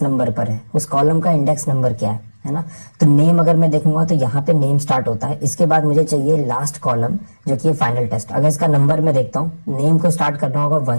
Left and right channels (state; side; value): inverted; both; correlation -1.00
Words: नंबर पर है, उस कॉलम का इंडेक्स नंबर क्या है ना। तो नेम अगर मैं देखूंगा तो यहाँ पे नेम स्टार्ट होता है। इसके बाद मुझे चाहिए लास्ट कॉलम जो कि फाइनल टेस्ट। अगर इसका नंबर मैं देखता हूँ, नेम को स्टार्ट करना होगा